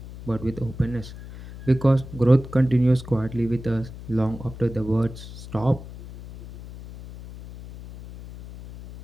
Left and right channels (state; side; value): noise; left; hum, 14 dB below the sound